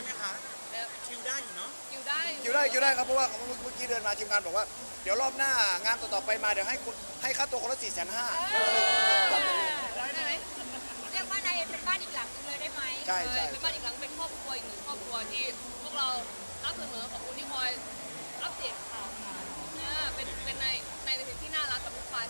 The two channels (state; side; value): inverted; both; correlation -1.00